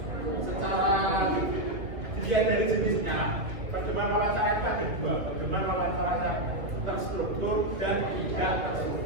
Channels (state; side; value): late; left; 1.9 ms